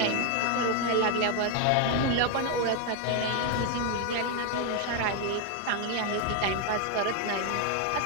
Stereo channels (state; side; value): different; both; correlation 0.01